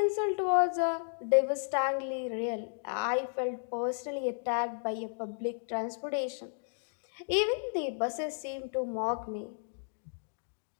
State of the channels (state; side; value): silent; right; digital silence